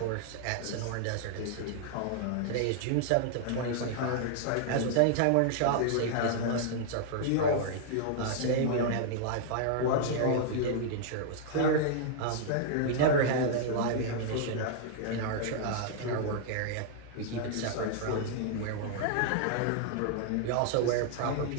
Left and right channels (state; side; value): different; both; correlation -0.01